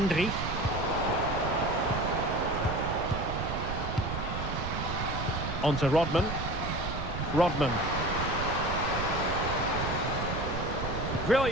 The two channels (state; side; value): noise; right; rumble, 4 dB below the sound